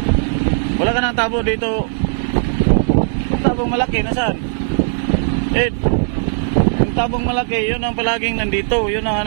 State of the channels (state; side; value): silent; left; 63 dB below the other